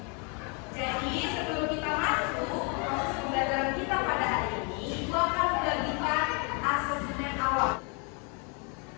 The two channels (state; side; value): quieter; right; 34.9 dB